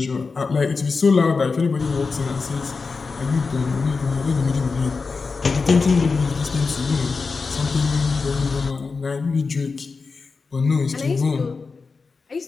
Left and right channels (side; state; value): right; quieter; 4.5 dB